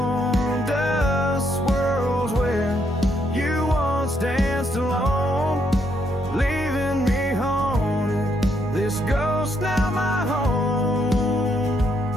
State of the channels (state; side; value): normal; both; correlation 0.74